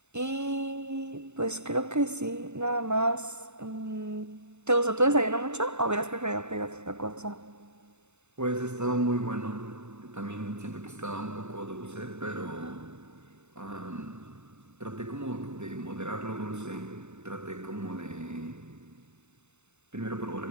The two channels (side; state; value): left; late; 0.82 ms